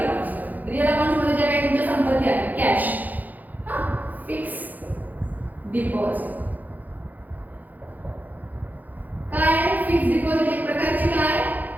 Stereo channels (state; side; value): late; left; 0.082 ms